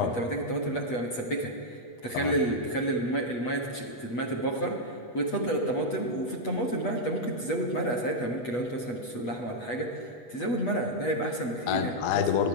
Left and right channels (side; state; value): right; late; 8.2 ms